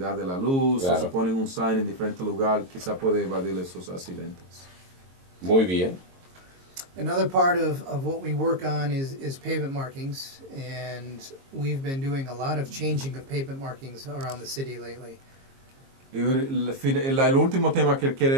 de la luz, claro, o si ponen un sign en diferente lugar, quizá puede evadir esos accidentes. Muy bien. Another part of what we work on is pavement markings, and we've been doing a lot of changing of pavement markings around the city lately. Y el último tema que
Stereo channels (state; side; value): late; left; 22 ms